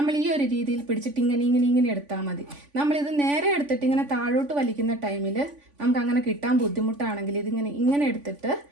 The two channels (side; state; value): left; late; 3.5 ms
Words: ഈ ഒരു രീതിയിൽ പിടിച്ചിട്ട് ഇങ്ങനെ എടുത്താൽ മതി. നമ്മളിത് നേരെ എടുത്തിട്ട് ഇങ്ങനെ താഴോട്ട് വലിക്കുന്ന ടൈമിൽ നമുക്ക് അങ്ങനെ കിട്ടാൻ ബുദ്ധിമുട്ടാണെങ്കിൽ ഇങ്ങനെ എടുത്തിട്ട്